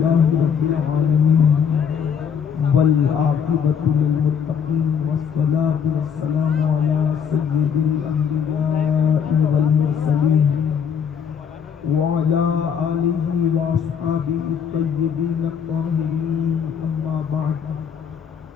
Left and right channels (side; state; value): right; quieter; 7.2 dB